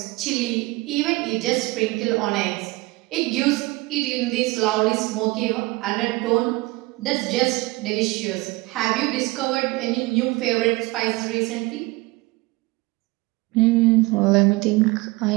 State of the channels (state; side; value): quieter; left; 22.6 dB